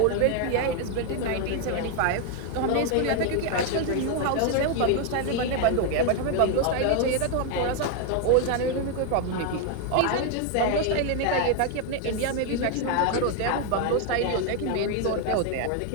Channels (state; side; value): different; both; correlation 0.01